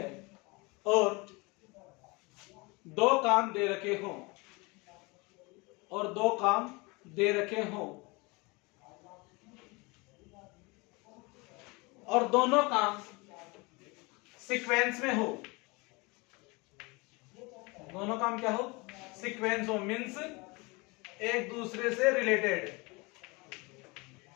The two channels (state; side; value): quieter; right; 26.4 dB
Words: और दो काम दे रखे हों, और दो काम दे रखे हों, और दोनों काम सीक्वेंस में हो। दोनों काम क्या हो? सीक्वेंस हो, मीन्स एक दूसरे से रिलेटेड,